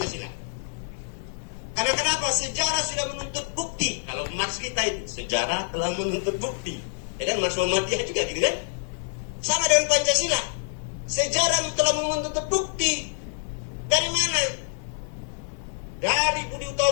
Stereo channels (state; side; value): silent; right; digital silence